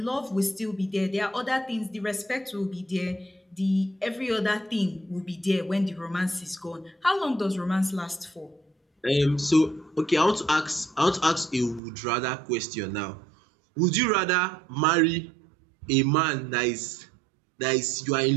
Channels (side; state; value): left; drops out; at 11.8 s